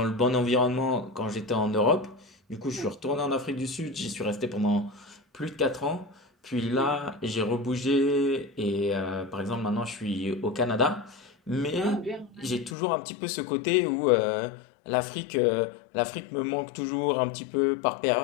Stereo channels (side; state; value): right; drops out; at 12.8 s